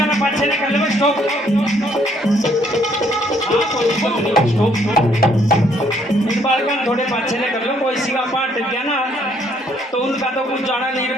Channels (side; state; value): both; normal; correlation 0.67